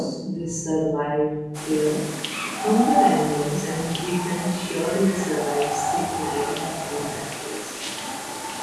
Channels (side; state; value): both; identical; correlation 1.00